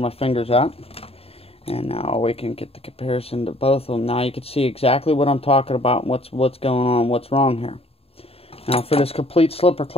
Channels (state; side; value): late; right; 0.28 ms